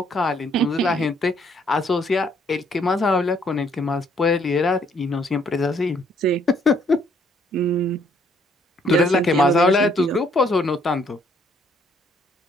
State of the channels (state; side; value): normal; both; correlation 0.66